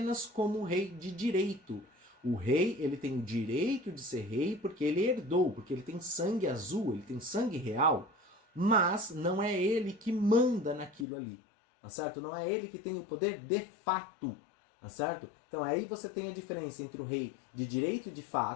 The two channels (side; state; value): right; drops out; at 11.1 s